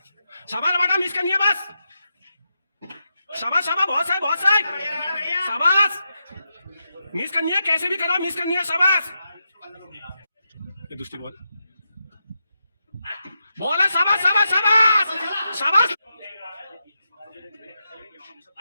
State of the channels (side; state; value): both; inverted; correlation -0.86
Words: शाबाश बेटा, मिस करनी है बस, शाबाश शाबाश, बहुत सही बहुत सही, शाबाश, मिस करनी है, कैसे भी करो मिस करनी है, शाबाश। ये दूसरी बॉल, बॉल है, शाबाश शाबाश शाबाश शाबाश,